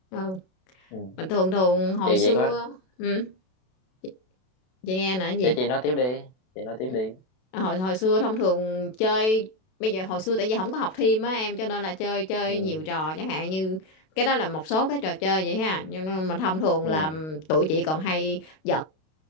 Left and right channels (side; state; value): right; late; 32 ms